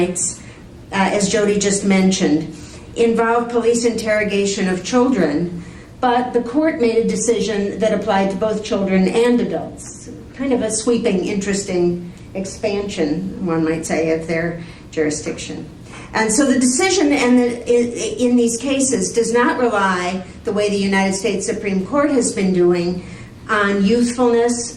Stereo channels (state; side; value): identical; both; correlation 1.00